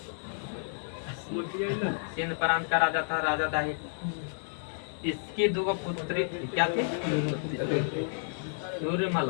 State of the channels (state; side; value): silent; right; digital silence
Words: सिंध प्रांत का राजा था राजा दाहिर। इसकी दो पुत्री थी। क्या थी?